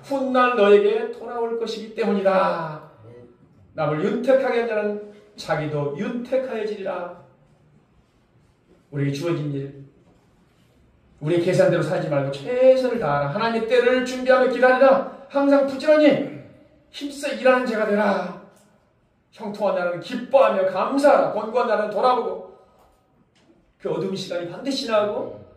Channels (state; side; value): identical; both; correlation 1.00